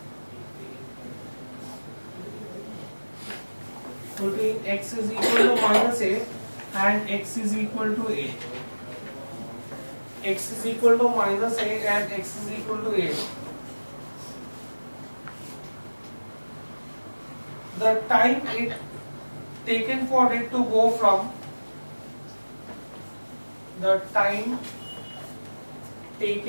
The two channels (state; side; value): inverted; both; correlation -1.00